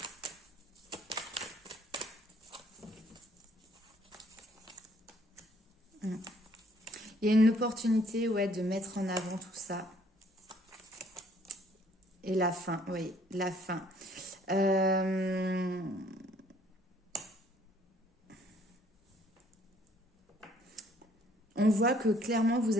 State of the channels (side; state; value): both; normal; correlation 0.62